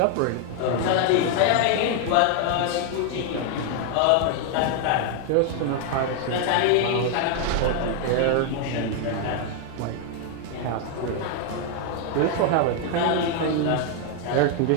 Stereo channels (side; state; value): both; different; correlation 0.00